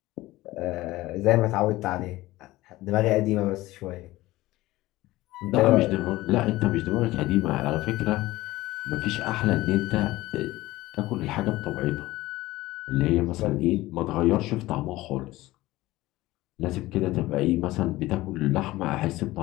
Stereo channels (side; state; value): right; quieter; 17.9 dB